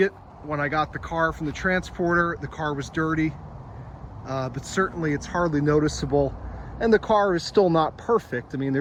it when I got the car from the transporter. The car was dirty, but certainly it's hardly noticeable. And the car is still not perfect. I mean,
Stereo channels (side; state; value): both; identical; correlation 1.00